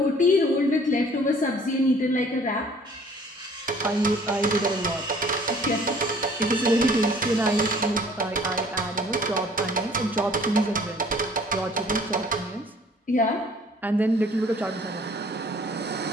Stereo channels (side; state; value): both; normal; correlation 0.54